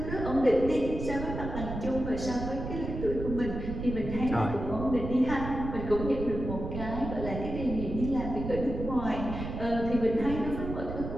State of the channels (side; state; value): right; noise; rumble, 6 dB below the sound